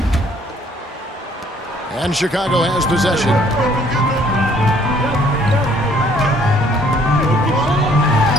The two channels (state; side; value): normal; both; correlation 0.61